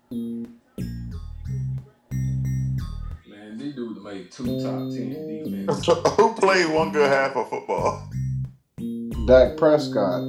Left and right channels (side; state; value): both; identical; correlation 1.00